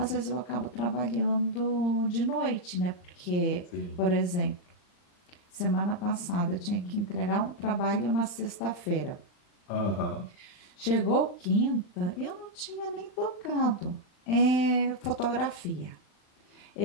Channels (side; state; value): right; late; 39 ms